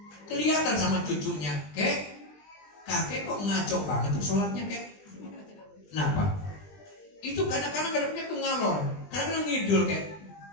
Kelihatan sama cucunya, kakek kok ngaco banget tuh sholatnya, kek. Kenapa? Itu kadang-kadang ngadepnya ke ngalor, kadang-kadang ngidul, kek.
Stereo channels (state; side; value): late; right; 20 ms